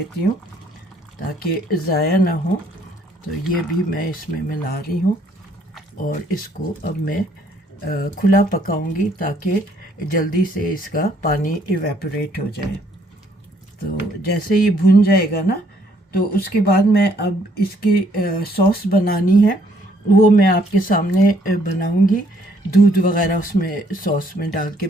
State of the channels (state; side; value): normal; both; correlation 0.66